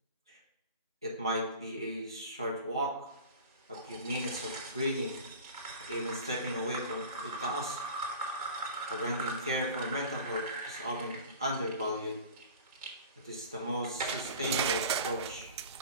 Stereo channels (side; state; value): both; inverted; correlation -0.38